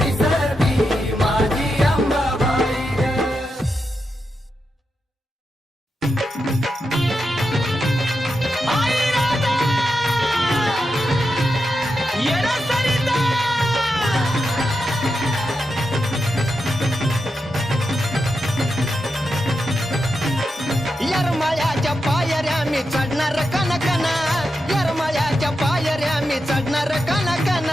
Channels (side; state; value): both; normal; correlation 0.87